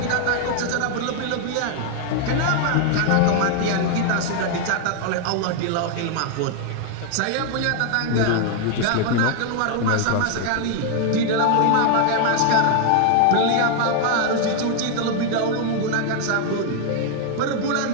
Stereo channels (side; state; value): both; different; correlation 0.00